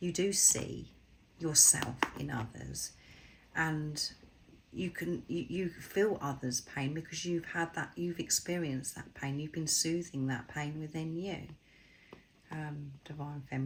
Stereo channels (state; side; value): identical; both; correlation 1.00